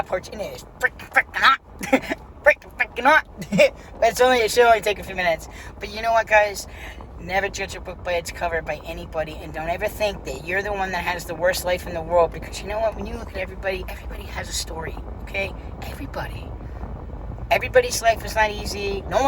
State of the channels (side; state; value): both; identical; correlation 1.00